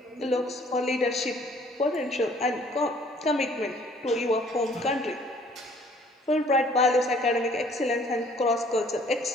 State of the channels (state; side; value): normal; both; correlation 0.58